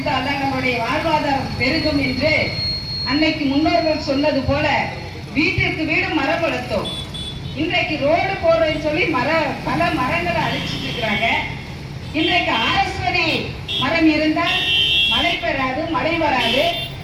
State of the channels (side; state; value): both; identical; correlation 1.00